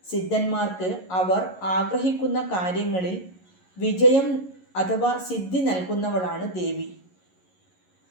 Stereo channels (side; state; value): right; late; 11 ms